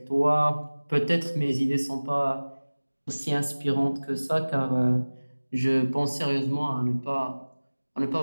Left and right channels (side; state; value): both; inverted; correlation -1.00